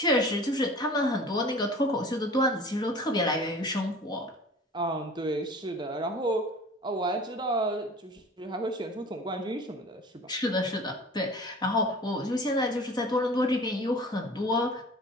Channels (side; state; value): both; normal; correlation 0.42